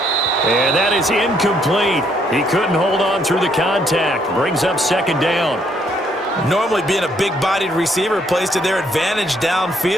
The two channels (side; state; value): both; normal; correlation 0.69